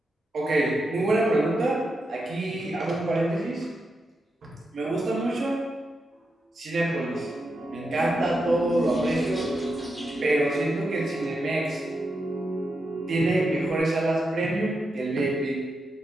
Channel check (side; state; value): both; normal; correlation 0.86